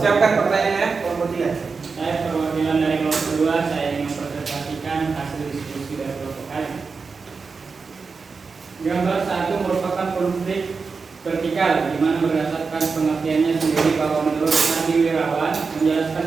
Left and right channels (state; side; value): quieter; left; 4.8 dB